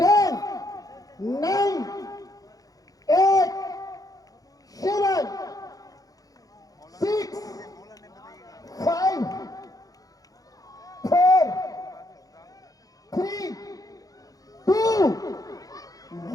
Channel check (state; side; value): late; right; 0.17 ms